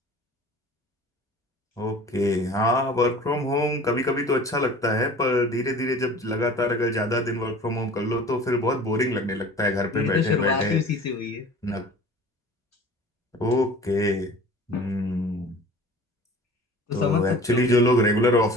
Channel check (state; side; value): normal; both; correlation 0.43